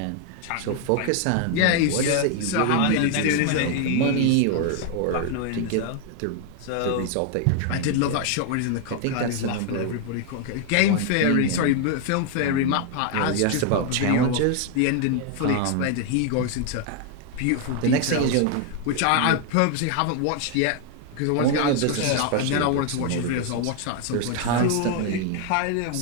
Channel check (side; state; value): both; different; correlation 0.00